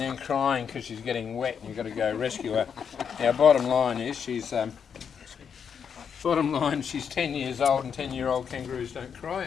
crying because she's getting wet, and you've got to go rescue her. Now, bottom line is she's 10 years old, and 10-year-old kangaroos don't cry.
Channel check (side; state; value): right; quieter; 7.1 dB